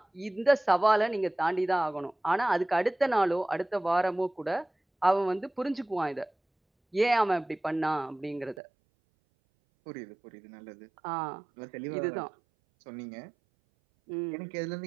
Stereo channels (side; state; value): left; drops out; at 8.6 s